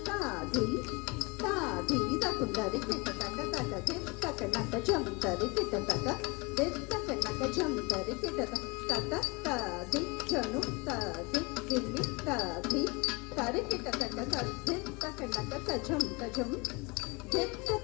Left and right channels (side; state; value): right; quieter; 27.4 dB